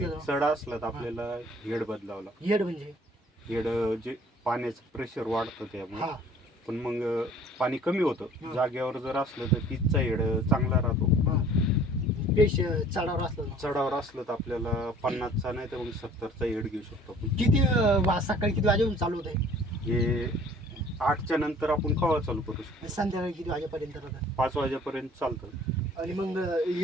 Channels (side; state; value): both; normal; correlation 0.52